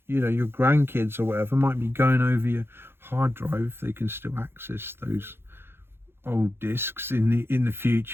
grandkids or whatever might be going over your hard drive if they can still access those old discs in the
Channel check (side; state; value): left; late; 0.11 ms